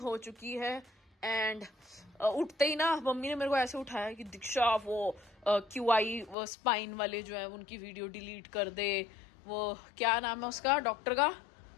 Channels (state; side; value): drops out; right; at 6.4 s